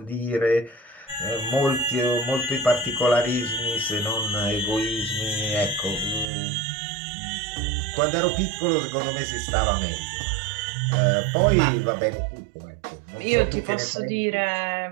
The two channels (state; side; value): drops out; left; at 6.3 s